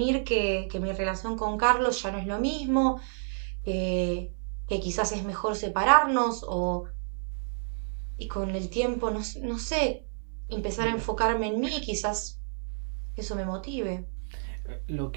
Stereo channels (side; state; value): left; silent; 58 dB below the other